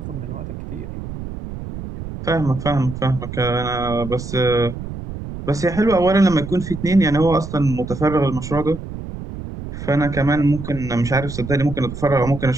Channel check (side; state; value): right; noise; rumble, 9 dB below the sound